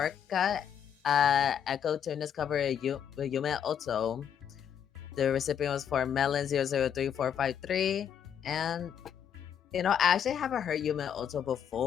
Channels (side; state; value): right; quieter; 8.7 dB